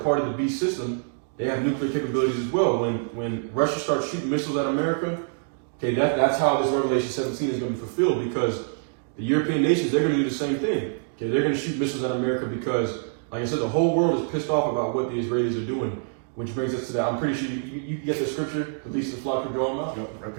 of the beast system, they have nuclear capabilities as well. When Russia starts shooting missiles at America, okay, that's how this Revelation 17 is going to be fulfilled, because the European nations, they're going to do the same thing. Okay, they're going to shoot missiles at America because, like I said, the whole world is pissed off about what the Israelis are doing, which brings us to that. I'm pretty sure you get the scripture, the least of the flock will draw them out. Yep, right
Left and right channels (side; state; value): left; silent; digital silence